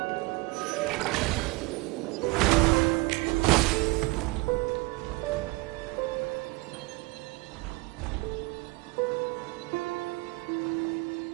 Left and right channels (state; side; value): quieter; left; 23.4 dB